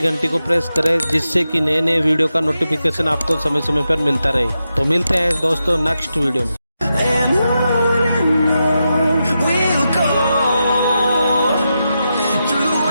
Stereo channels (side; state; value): both; inverted; correlation -0.88